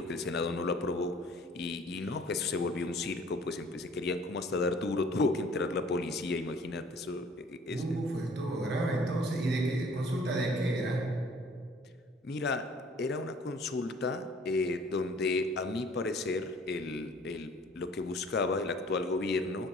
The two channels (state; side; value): normal; both; correlation 0.54